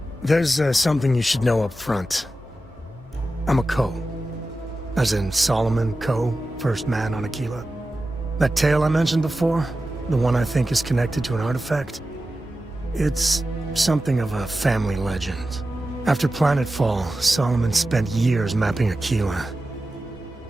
There's something you should know up front. I'm a Co. As in Solomon Co., first man on Aquila. That tale I mentioned before, the one I think is connected to an artifact, it's something of a family legend. After Planetfall, Solomon spent years mapping Aquila,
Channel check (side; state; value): both; normal; correlation 0.93